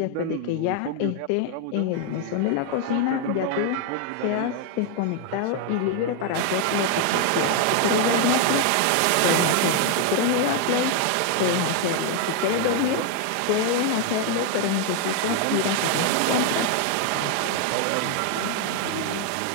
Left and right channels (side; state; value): both; different; correlation 0.00